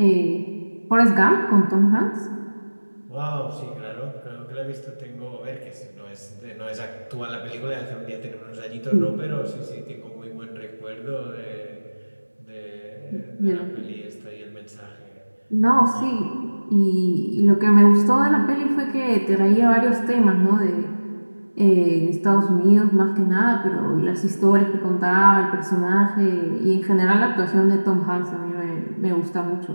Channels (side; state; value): both; inverted; correlation -1.00